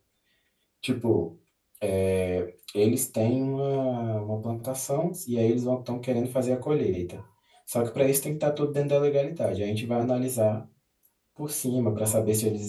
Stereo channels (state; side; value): identical; both; correlation 1.00